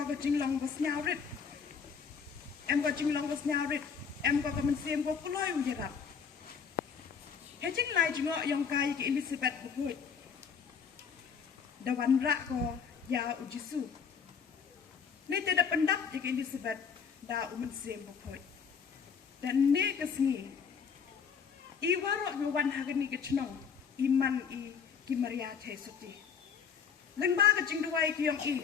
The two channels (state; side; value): quieter; right; 6.5 dB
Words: kecing long bos nyawrit. Go kecing long bos nyawrit. Go ke mensiem go kuloi ujarap. Kecing lai jengok yang kai ke Elizabeth bukut. Dawan rak ko ya ujisu. Ni tidak pendap ke Elizabeth da umen sem bukut. Dan ni kesengi. I warok ngawan hagani ke cenong. Iman I ki Maria Tesuti. Lengba kecing duai ki yang